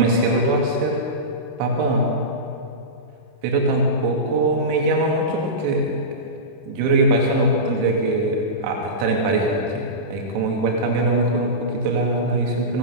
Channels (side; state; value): left; late; 19 ms